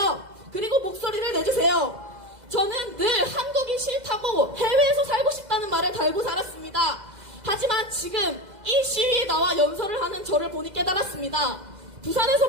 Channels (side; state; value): left; late; 2.0 ms